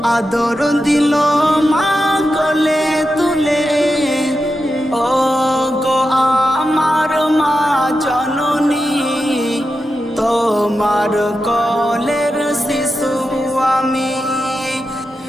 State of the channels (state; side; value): normal; both; correlation 0.89